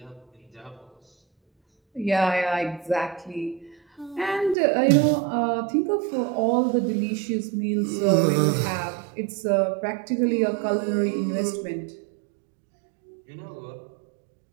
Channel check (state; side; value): drops out; left; at 4.5 s